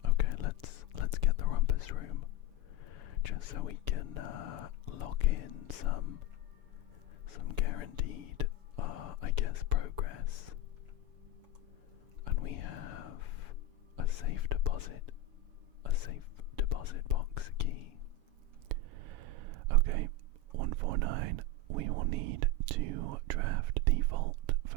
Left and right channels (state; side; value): late; left; 7.1 ms